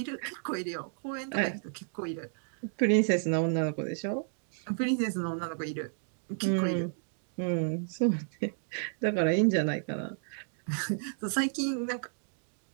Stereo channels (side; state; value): left; silent; digital silence